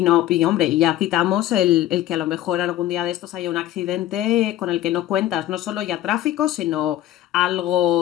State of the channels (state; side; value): quieter; right; 13.5 dB